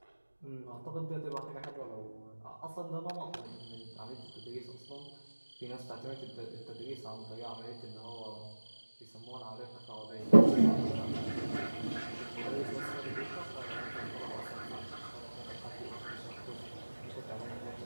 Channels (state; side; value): inverted; both; correlation -1.00